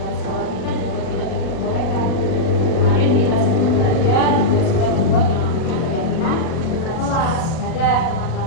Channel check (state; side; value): late; right; 37 ms